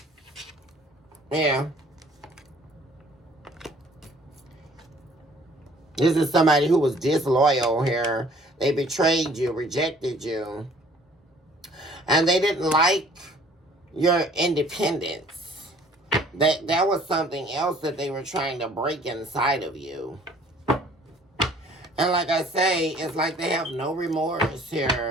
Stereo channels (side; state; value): both; normal; correlation 0.55